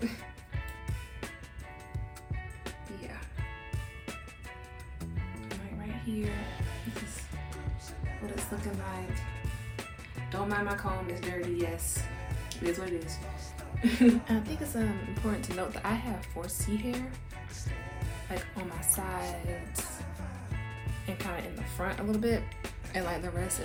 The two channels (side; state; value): both; identical; correlation 1.00